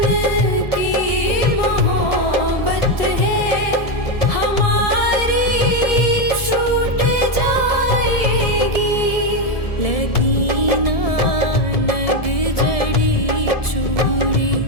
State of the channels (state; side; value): late; right; 1.7 ms